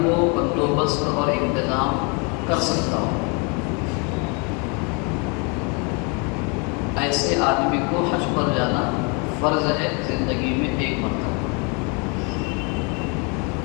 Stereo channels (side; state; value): right; quieter; 33.2 dB